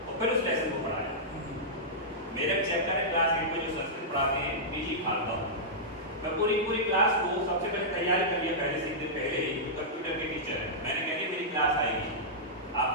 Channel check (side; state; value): both; normal; correlation -0.12